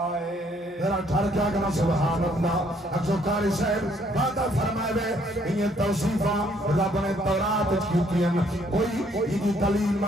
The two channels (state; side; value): normal; both; correlation 0.66